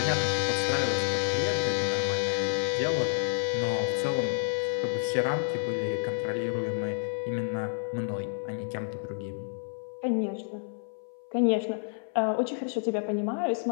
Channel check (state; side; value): silent; right; 56 dB below the other